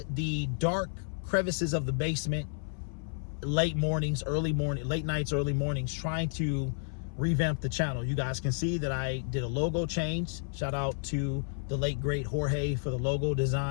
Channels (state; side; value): silent; right; 56 dB below the other